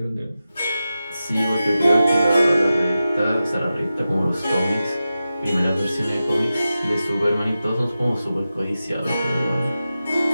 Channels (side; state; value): both; inverted; correlation -0.92